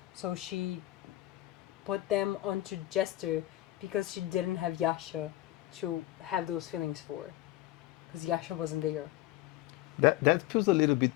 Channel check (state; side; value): quieter; right; 16.0 dB